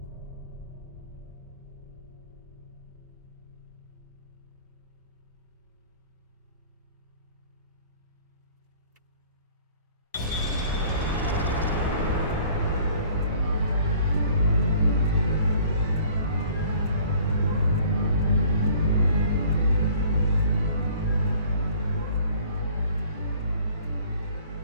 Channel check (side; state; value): both; inverted; correlation -0.53